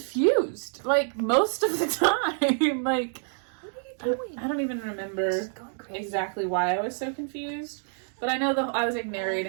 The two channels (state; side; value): silent; left; 60 dB below the other